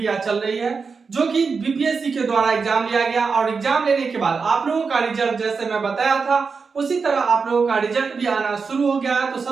चल रही है, जो कि बीपीएससी के द्वारा एग्जाम लिया गया और एग्जाम लेने के बाद आप लोगों का रिजल्ट जैसे मैं बताया था उसी तरह आप लोगों का रिजल्ट भी आना शुरू हो गया है। तो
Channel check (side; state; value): left; quieter; 5.1 dB